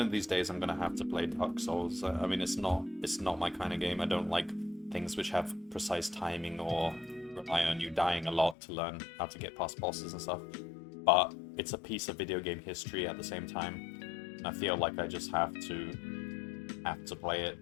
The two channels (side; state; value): right; drops out; at 8.6 s